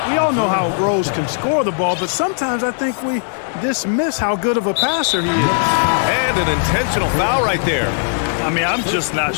We all know how Rose can score the ball, but sometimes I think we dismiss how good of a passer he is. And an intentional foul right there. I mean, I'm just not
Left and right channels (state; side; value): silent; right; 68 dB below the other